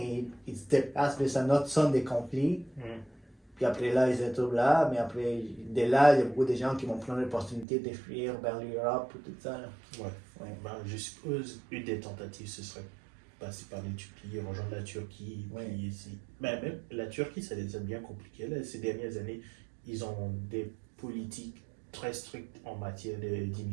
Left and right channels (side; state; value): left; drops out; at 7.7 s